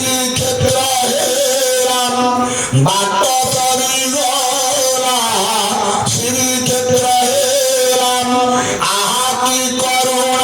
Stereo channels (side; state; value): both; identical; correlation 1.00